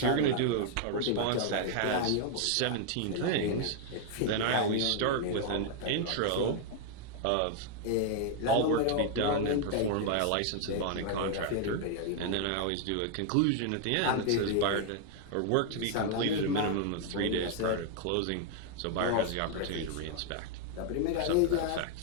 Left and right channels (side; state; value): both; different; correlation 0.00